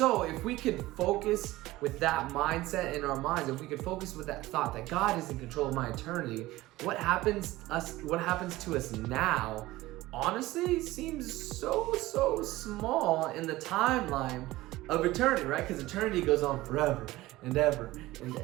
if we could focus with that mindset in our minds, if we could focus with that thought that God is in control of my eternity, what happens to us now honestly seems so small in the timeline of eternity, right? Because eternity goes on forever and ever and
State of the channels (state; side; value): quieter; left; 18.0 dB